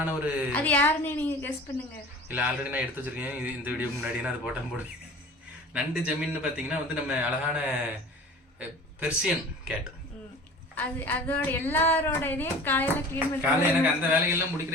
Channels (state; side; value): normal; both; correlation 0.41